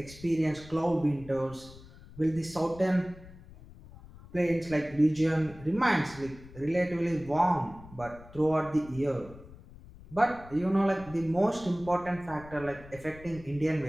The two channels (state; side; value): noise; left; rumble, 19 dB below the sound